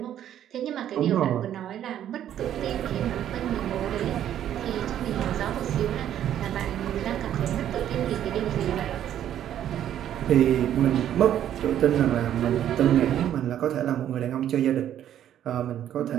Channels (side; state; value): left; quieter; 10.9 dB